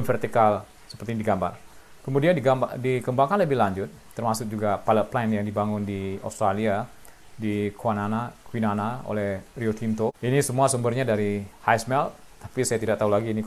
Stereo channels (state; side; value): identical; both; correlation 1.00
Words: vertikal seperti ini digambar. Kemudian dikembangkan lebih lanjut, termasuk juga pilot plant yang dibangun di Australia, di Kwinana oleh Rio Tinto. Ini semua sumbernya dari high smelt, tapi saya tidak tahu lagi ini